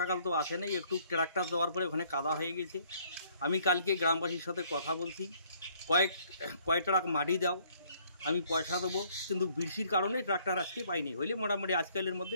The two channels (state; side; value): inverted; both; correlation -0.63